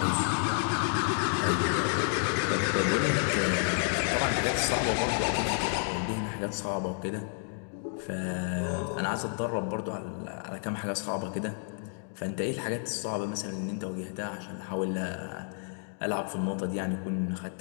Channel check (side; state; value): right; silent; 57 dB below the other